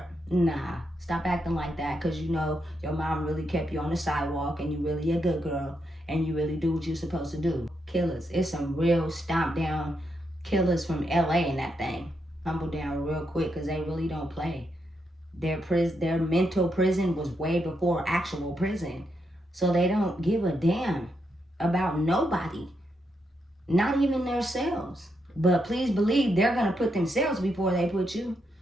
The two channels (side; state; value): both; normal; correlation 0.81